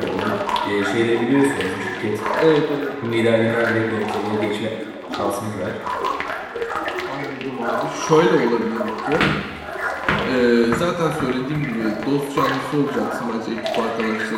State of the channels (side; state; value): both; identical; correlation 1.00